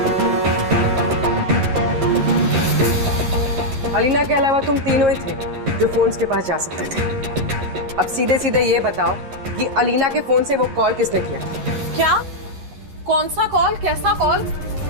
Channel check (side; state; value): left; late; 11 ms